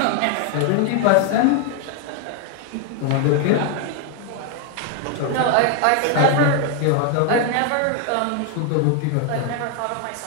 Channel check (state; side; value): different; both; correlation 0.00